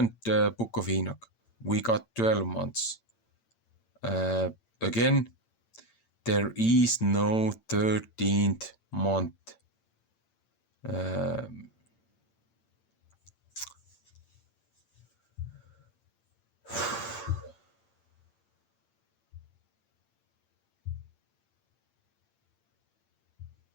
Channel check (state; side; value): late; right; 8.8 ms